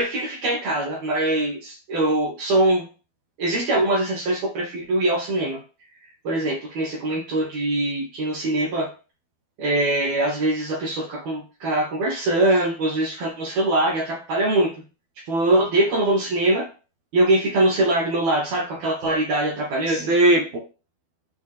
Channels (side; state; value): left; late; 12 ms